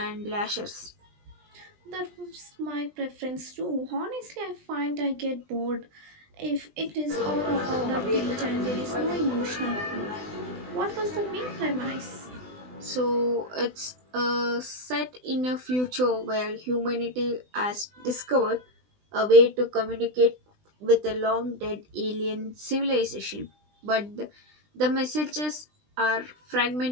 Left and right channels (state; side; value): late; left; 20 ms